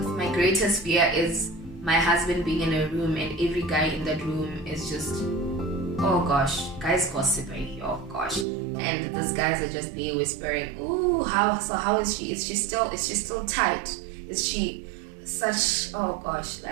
greatest fear is my husband being in a room and every guy in that room is just, oh gosh, guys gossiping, oh gosh, and these guys are just there whispering, ooh, how is she? Is she still tight? Is she such, oh gosh,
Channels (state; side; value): drops out; left; at 8.5 s